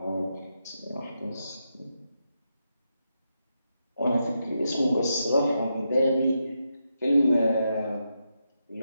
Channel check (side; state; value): both; inverted; correlation -0.85